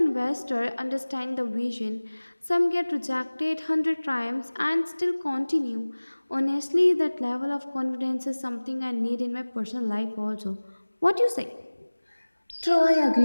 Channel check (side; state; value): both; inverted; correlation -1.00